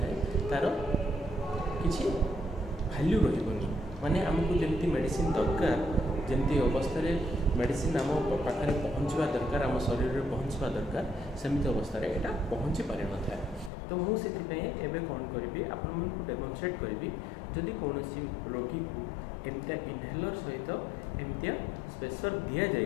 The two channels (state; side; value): drops out; right; at 13.7 s